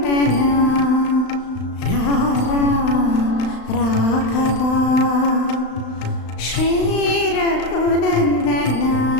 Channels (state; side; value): late; right; 35 ms